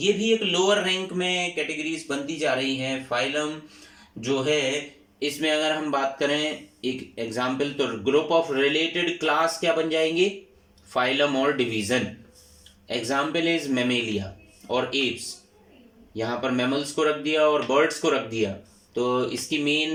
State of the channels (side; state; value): both; identical; correlation 1.00